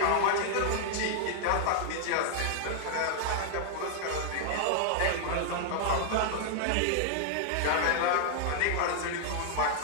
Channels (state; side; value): different; both; correlation -0.01